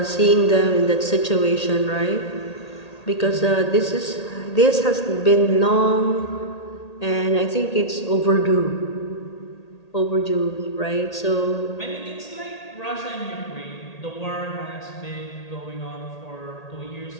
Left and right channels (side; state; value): right; late; 1.8 ms